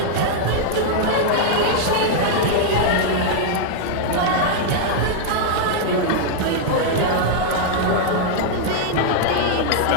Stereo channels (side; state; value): both; different; correlation -0.01